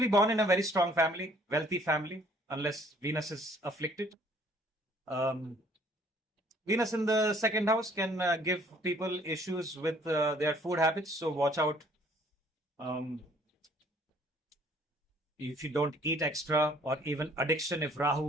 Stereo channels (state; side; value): normal; both; correlation 0.59